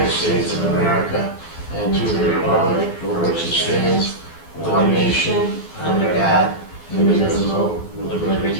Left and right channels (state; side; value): late; right; 12 ms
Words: States of America and to the republic for which it stands, one nation, under God, indivisible, with